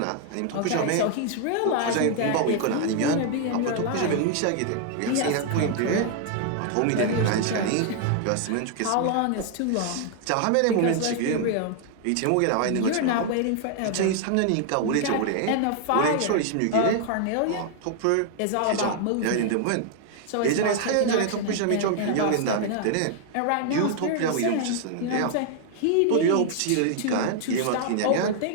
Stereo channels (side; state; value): both; different; correlation 0.00